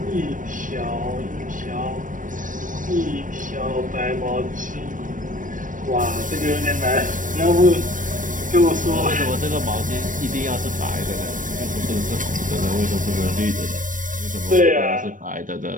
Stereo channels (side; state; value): left; late; 0.38 ms